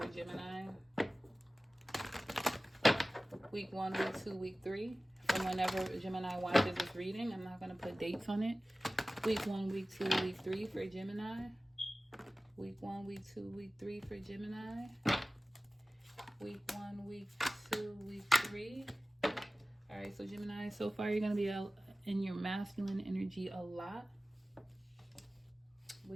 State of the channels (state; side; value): normal; both; correlation 0.97